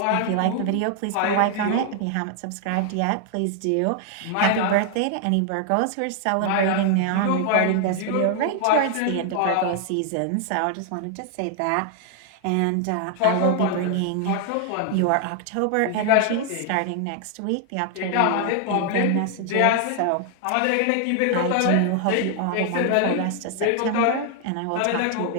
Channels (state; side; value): different; both; correlation 0.00